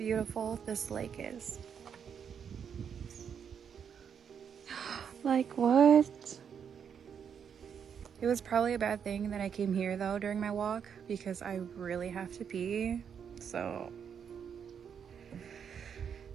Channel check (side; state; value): left; quieter; 7.5 dB